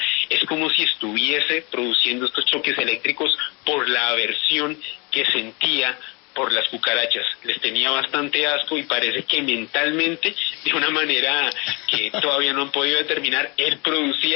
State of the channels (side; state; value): right; quieter; 28.9 dB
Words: es como si estuviese produciendo estos choques eléctricos por la aversión que sentía por las cucarachas. Les tenía bastante asco y parece que mentalmente, de una manera que todavía no han podido determinar, él